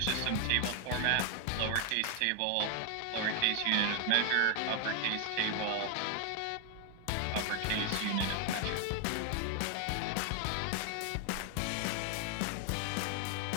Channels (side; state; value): both; different; correlation 0.00